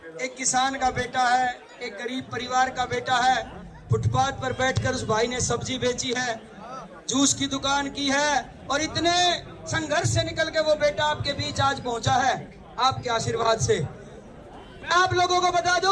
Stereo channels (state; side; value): identical; both; correlation 1.00